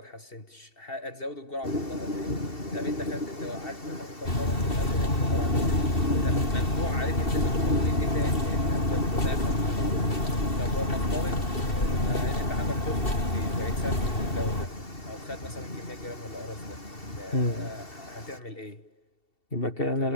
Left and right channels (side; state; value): right; late; 2.7 ms